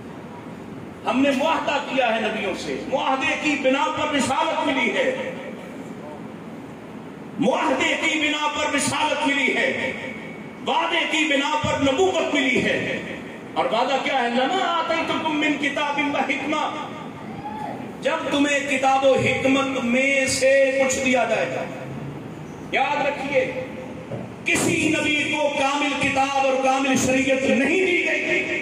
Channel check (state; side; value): identical; both; correlation 1.00